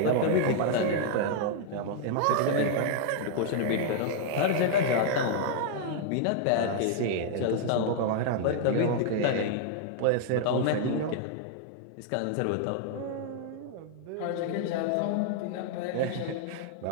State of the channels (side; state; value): both; different; correlation -0.01